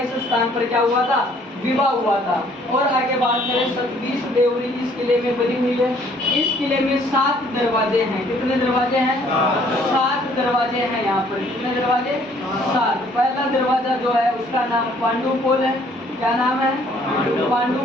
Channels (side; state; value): both; normal; correlation 0.61